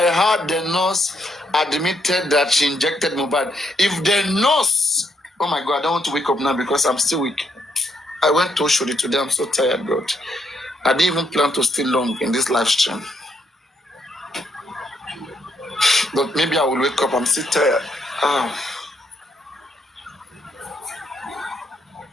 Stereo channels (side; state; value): both; normal; correlation 0.75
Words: had the nurse admitted that she injected Mohbad. If the nurse, oh my God, I don't want to wake up now because I'm still weak. I went to Oshodi today. I'm so tired, God. I didn't even plan to stay long in this live stream. But maybe I will wake up. I'm still tired.